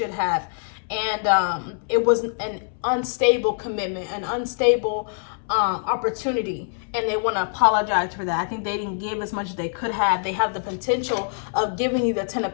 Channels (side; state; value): right; silent; 63 dB below the other